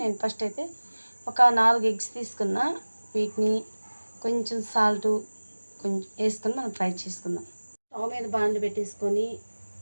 నేను ఫస్ట్ అయితే ఒక 4 ఎగ్స్ తీసుకున్నా. వీటిని కొంచెం సాల్ట్ కొంచెం వేసుకొని మనం ఫ్రై చేసుకుందాం. స్టవ్ మీద బాండ్లు పెట్టేసుకొని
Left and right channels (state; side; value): inverted; both; correlation -1.00